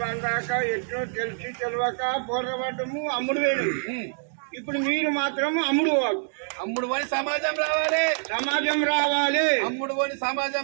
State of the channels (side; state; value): left; silent; digital silence